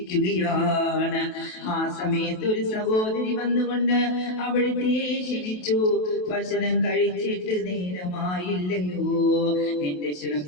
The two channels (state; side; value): late; right; 28 ms